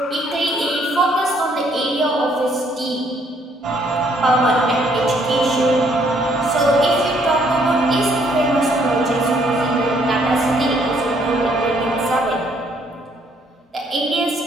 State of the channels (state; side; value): normal; both; correlation 0.67